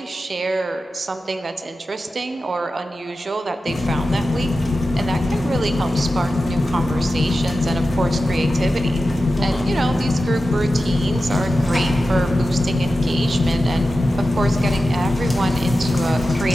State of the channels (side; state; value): both; normal; correlation 0.93